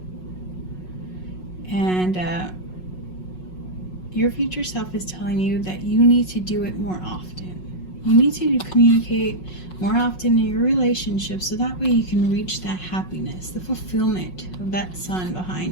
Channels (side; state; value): right; late; 5.5 ms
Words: and your future self is telling you that you need to do it more often. You need to communicate more often in your relationship, so that way you can reach that happiness, the fulfillment of that sun